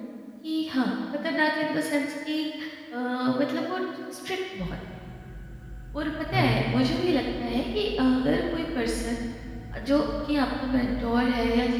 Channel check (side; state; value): both; identical; correlation 1.00